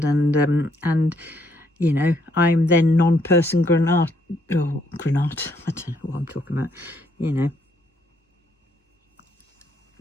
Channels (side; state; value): both; normal; correlation 0.71